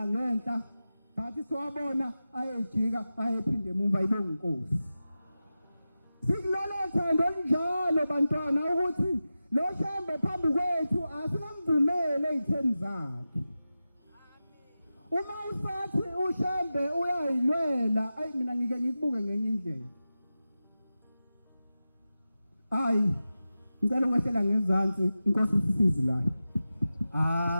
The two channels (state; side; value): inverted; both; correlation -0.94